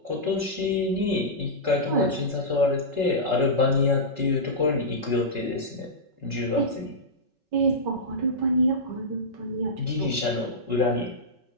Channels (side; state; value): left; late; 5.3 ms